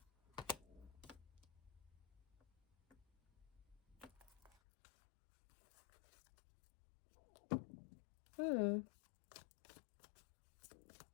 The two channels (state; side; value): drops out; right; at 4.5 s